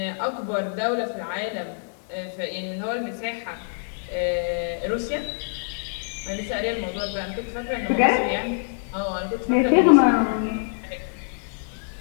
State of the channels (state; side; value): silent; right; 60 dB below the other